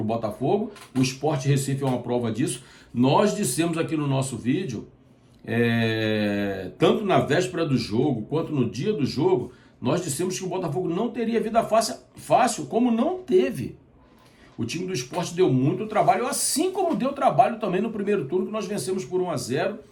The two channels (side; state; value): both; identical; correlation 1.00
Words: o Botafogo. O Sport Recife é uma prova disso. Nós dissemos aqui no nosso vídeo, tanto na véspera do jogo quanto no dia do jogo, nós dissemos que o Botafogo não teria vida fácil, como não teve. O time do Sport deu muito trabalho, assim como deu trabalho também no primeiro turno, que nós vencemos por 1-0,